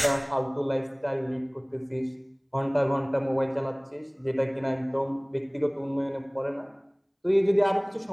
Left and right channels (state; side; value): identical; both; correlation 1.00